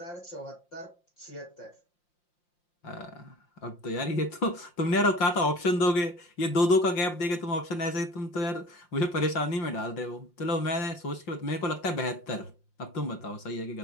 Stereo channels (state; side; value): late; right; 5.7 ms